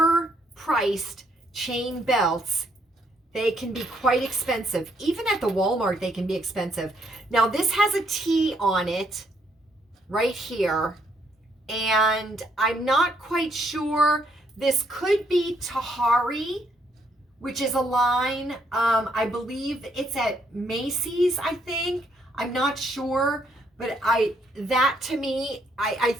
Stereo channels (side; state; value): both; normal; correlation 0.71